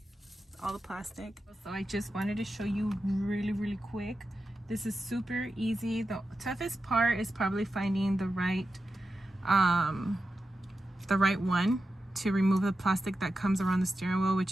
all the plastic. So I just wanted to show you really quick. This is super easy. The toughest part is probably finding the right one to remove the plastic that comes around the steering wheel,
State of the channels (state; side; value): normal; both; correlation 0.90